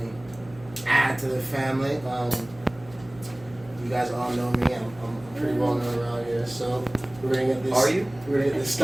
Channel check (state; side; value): noise; right; hum, 22 dB below the sound